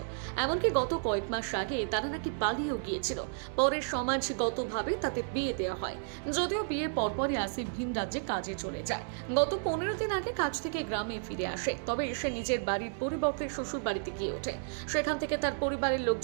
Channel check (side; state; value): left; silent; digital silence